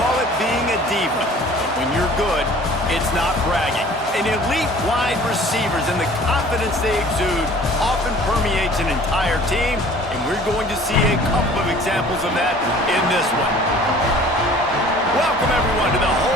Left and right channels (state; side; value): normal; both; correlation 0.49